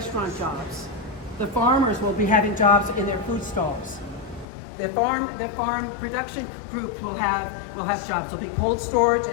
jobs. The farmers will be having jobs in their food stalls. The farm production groups will have jobs. There'll be cold storage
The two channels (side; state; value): right; drops out; at 4.5 s